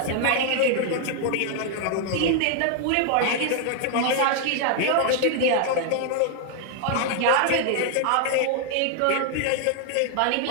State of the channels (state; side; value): different; both; correlation 0.00